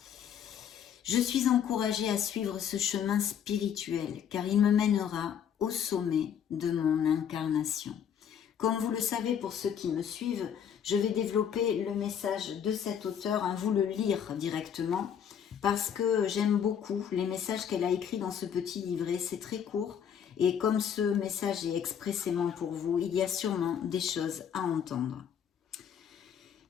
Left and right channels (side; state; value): right; quieter; 8.4 dB